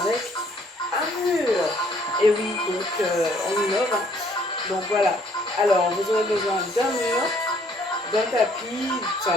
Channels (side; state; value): both; normal; correlation 0.63